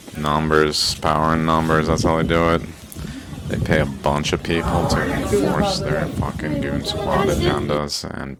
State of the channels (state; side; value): identical; both; correlation 1.00